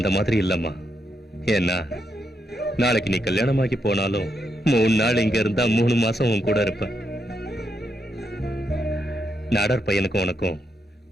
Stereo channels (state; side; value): normal; both; correlation 0.81